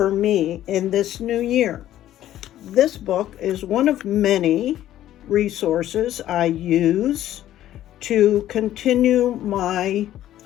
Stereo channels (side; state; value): right; quieter; 12.8 dB